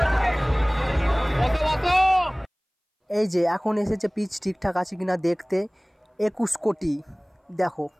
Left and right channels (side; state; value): both; identical; correlation 1.00